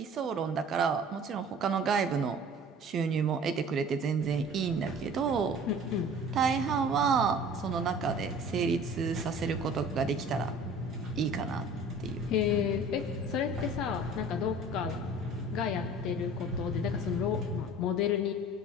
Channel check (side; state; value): both; normal; correlation 0.45